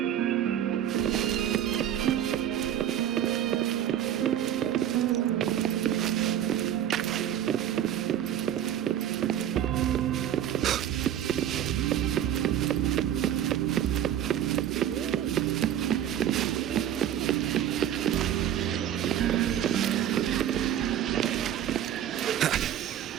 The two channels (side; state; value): left; quieter; 10.8 dB